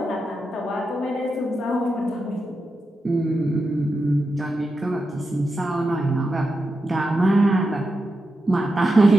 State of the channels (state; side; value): normal; both; correlation 0.89